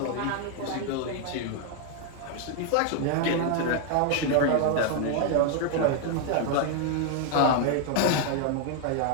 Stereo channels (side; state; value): both; different; correlation 0.00